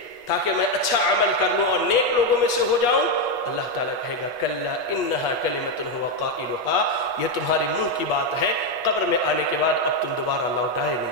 تاکہ میں اچھا عمل کر لوں اور نیک لوگوں میں سے ہو جاؤں، اللہ تعالیٰ کہے گا کلا انہا کلمۃ هو قائلها، یہ تمہاری منہ کی بات ہے، قبر میں آنے کے بعد اب تم دوبارہ لوٹائے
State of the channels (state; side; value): late; right; 8.3 ms